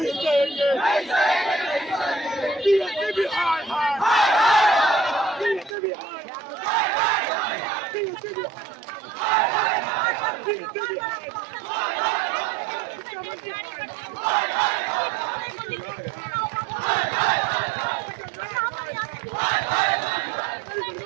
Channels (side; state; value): left; drops out; at 5.8 s